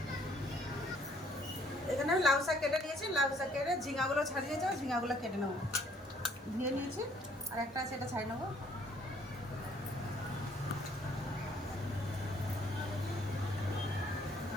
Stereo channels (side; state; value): both; normal; correlation 0.62